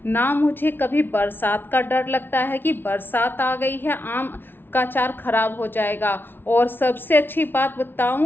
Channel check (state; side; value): late; right; 0.10 ms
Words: ना मुझे कभी बरसात का डर लगता है कि बरसात आ गई है आम का अचार ख़राब हो जाएगा। और सबसे अच्छी बात